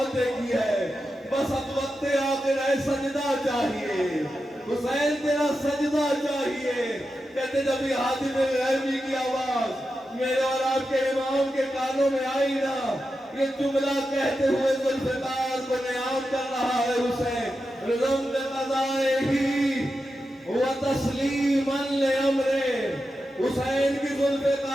دیکھی ہے، بس اب وقت آخر ہے سجدہ چاہیے، حسین تیرا سجدہ چاہیے۔ کہتے جب یہ حاطب غیبی کی آواز میرے اور آپ کے امام کے کانوں میں آئی نا، یہ جملہ کہتے ہوئے ذوالفقار کو نیام کر رہا ہے حسین، رضم قضائہی وتسلیماً لامرہ، حسین کی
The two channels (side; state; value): both; normal; correlation 0.90